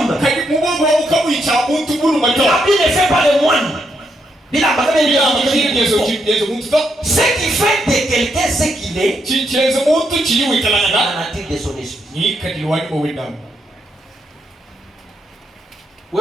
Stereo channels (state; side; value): normal; both; correlation 0.79